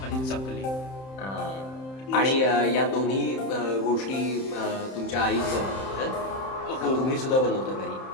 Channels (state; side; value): late; right; 31 ms